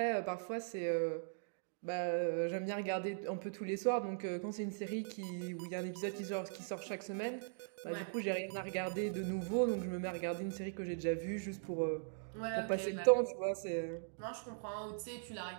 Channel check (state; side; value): silent; left; digital silence